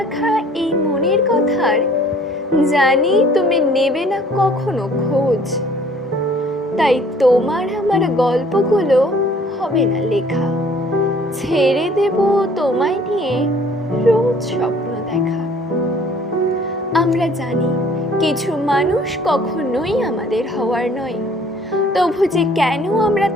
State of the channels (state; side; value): normal; both; correlation 0.55